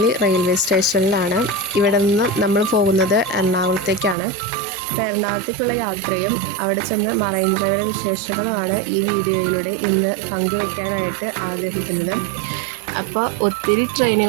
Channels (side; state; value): left; drops out; at 4.2 s